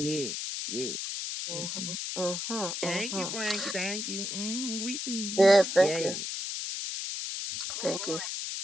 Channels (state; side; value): noise; left; hiss, 4 dB below the sound